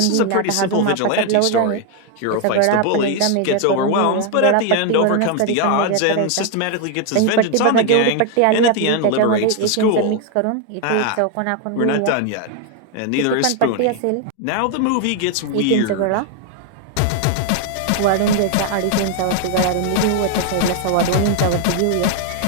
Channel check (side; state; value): both; different; correlation 0.01